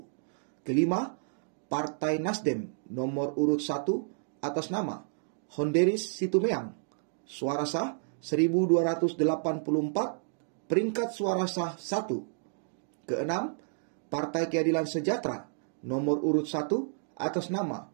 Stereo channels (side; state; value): left; silent; digital silence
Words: Kelima, Partai Nasdem nomor urut 1 atas nama Honderis Situmeang. Suara sah 1284, peringkat suara sah 1. Keenam, Partai Keadilan Sejahtera nomor urut 1 atas nama